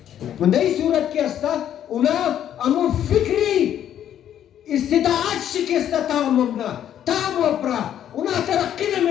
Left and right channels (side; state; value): right; quieter; 10.4 dB